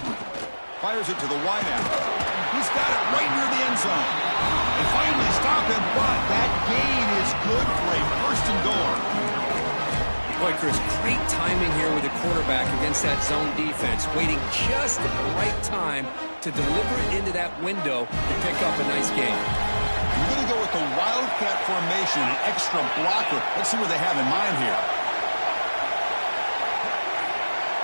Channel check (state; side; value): inverted; both; correlation -1.00